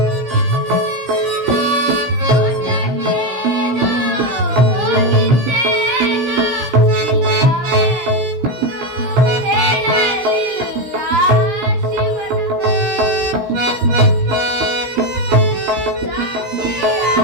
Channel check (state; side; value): late; left; 16 ms